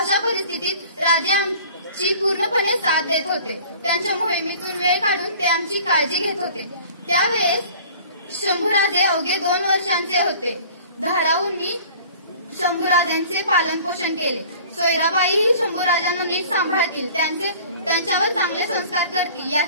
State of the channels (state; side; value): inverted; both; correlation -0.47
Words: राजे आमची पूर्णपणे साथ देत होते। त्यांच्या मोहिमेतून वेळ काढून ते आमची काळजी घेत होते। त्यावेळेस शंभूराजे अवघे 2 वर्षांचे होते। धाराऊंनी शंभूराजांचे पालन पोषण केले। सोयराबाईही शंभूराजांना नीट सांभाळतील, त्यांच्यावर चांगले संस्कार करतील